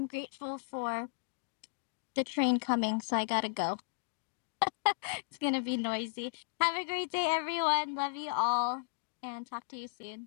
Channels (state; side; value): silent; right; digital silence